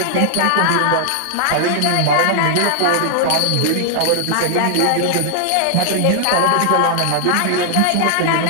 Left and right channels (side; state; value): both; different; correlation 0.00